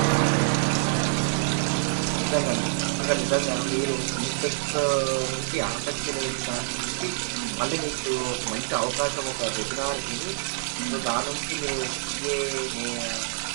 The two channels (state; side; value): silent; left; digital silence